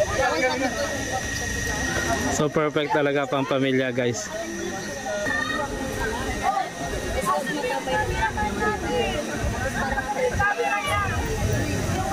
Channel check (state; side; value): identical; both; correlation 1.00